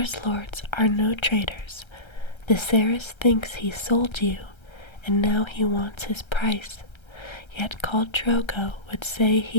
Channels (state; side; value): late; right; 1.3 ms